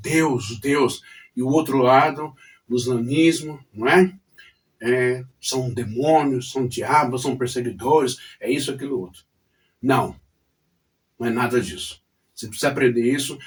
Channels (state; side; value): identical; both; correlation 1.00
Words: Deus. E o outro lado, o islamismo, não é? São demônios, são diabos, são perseguidores, é isso, aquilo, outro. Não, não é nada disso. Você precisa aprender isso